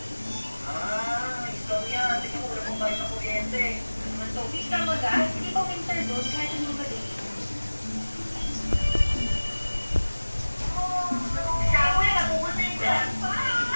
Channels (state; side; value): inverted; both; correlation -1.00